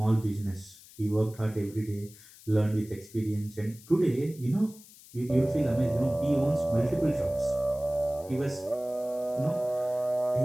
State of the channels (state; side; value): noise; left; hiss, 21 dB below the sound